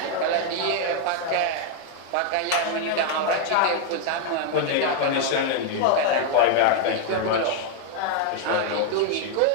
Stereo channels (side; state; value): both; different; correlation 0.00